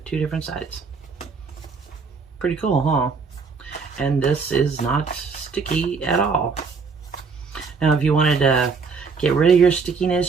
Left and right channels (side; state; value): left; quieter; 5.0 dB